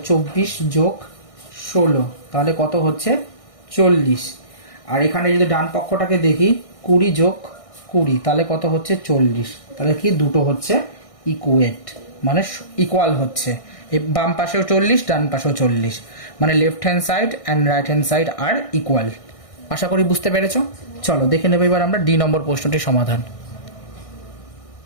24 + 16, তাহলে কত হচ্ছে 40। আর এখানে যদি ডান পক্ষটাকে দেখি 20 + 20, তাহলে কত হচ্ছে 40। তাহলে কি দুটো হচ্ছে ইকুয়েট, মানে ইকুয়াল হচ্ছে, এই বাম পাশেও 40 ডান পাশেও 40, মানে left hand side and right hand side আর ইকুয়াল। আশা করি বুঝতে পেরেছো। চলো দেখে নেব এবার আমরা ডি নম্বর প্রশ্নটির সমাধান।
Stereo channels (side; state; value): right; late; 1.6 ms